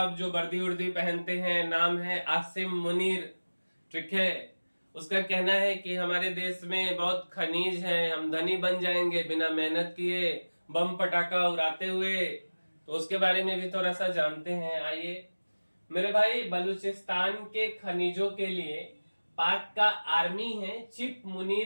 जो वर्दी उर्दी पहनते हैं, नाम है आसिम मुनीर, ठीक है। उसका कहना है कि हमारे देश में बहुत खनिज है, हम धनी बन जाएंगे बिना मेहनत किए, बम पटाखा उड़ाते हुए। तो उसके बारे में भी थोड़ा सा जानते हैं, आइए। मेरे भाई, बलूचिस्तान के खनिजों के लिए पाक का आर्मी है चिप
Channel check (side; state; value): both; inverted; correlation -1.00